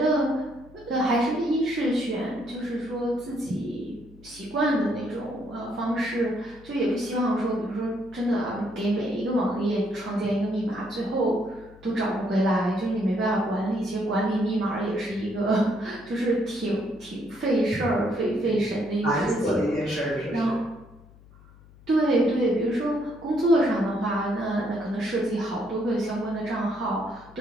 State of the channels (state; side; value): noise; left; hum, 23 dB below the sound